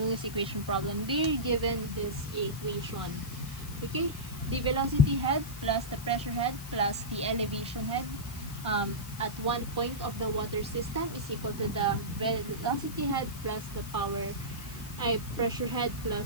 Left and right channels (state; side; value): noise; left; hiss, 14 dB below the sound